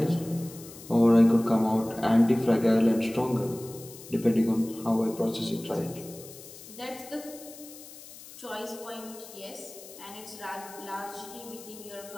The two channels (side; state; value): left; noise; hiss, 17 dB below the sound